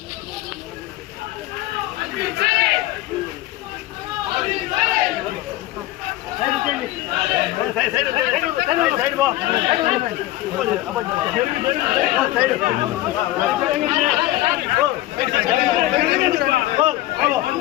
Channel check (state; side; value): quieter; right; 16.1 dB